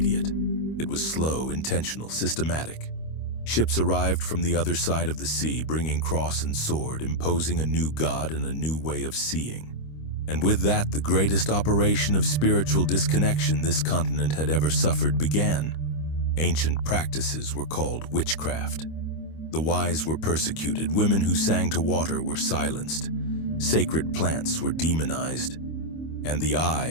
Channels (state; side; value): late; right; 25 ms